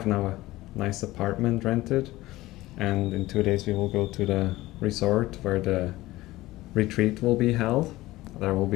now a nice apartment rented, and in 2 days we will go to the resort where the retreat will be held. There will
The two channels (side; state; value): right; quieter; 17.8 dB